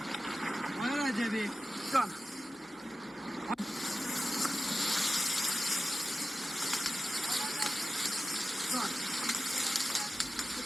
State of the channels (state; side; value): normal; both; correlation 0.94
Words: آقای رجبی جان